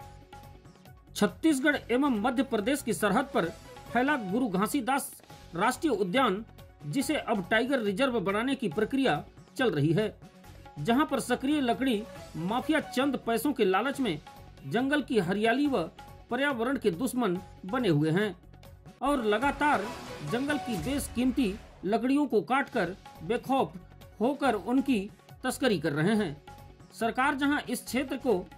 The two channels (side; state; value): both; identical; correlation 1.00